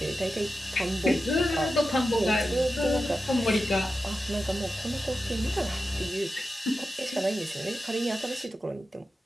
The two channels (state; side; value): normal; both; correlation 0.91